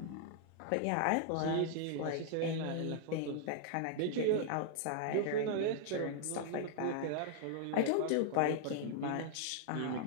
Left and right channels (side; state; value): both; different; correlation -0.01